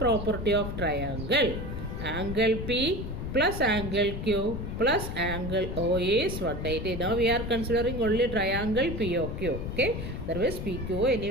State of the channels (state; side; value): noise; left; rumble, 5 dB below the sound